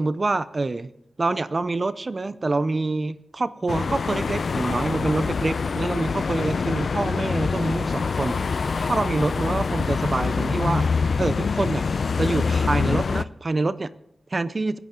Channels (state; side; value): normal; both; correlation 0.91